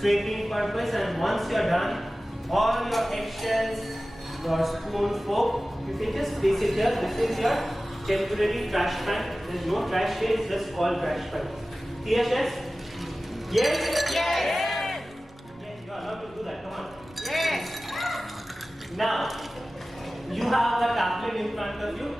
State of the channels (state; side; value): normal; both; correlation 0.96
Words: purpose, and once you are done, all your eggshells, your spoon, fork, you can just place it here. This is your temporary trash pan. There is no trash here, it's just called trash pan. Clear, yes? Yes? Yes. Yes, you are allowed to do that. Come on. Yes. Now, you have a tablet in front of you.